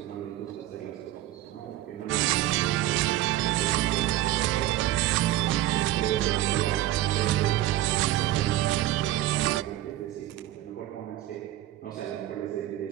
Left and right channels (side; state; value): left; quieter; 14.4 dB